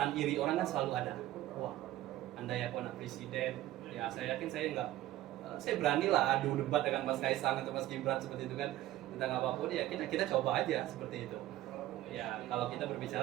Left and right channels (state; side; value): quieter; left; 14.7 dB